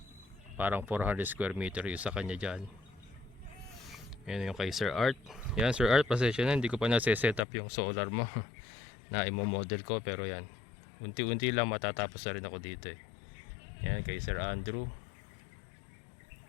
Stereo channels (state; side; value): drops out; right; at 7.4 s